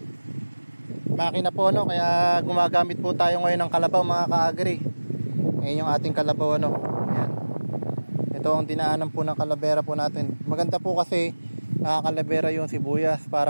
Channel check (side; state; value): both; inverted; correlation -1.00